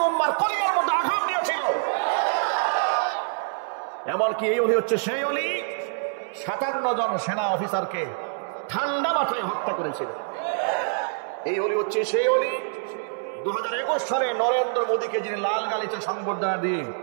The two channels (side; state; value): left; silent; 61 dB below the other